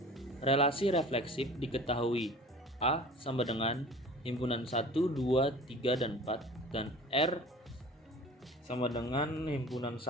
relasi refleksif diketahui A sama dengan himpunan 1, 2, 3, dan 4 dan R sama dengan himpunan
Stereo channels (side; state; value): both; normal; correlation 0.42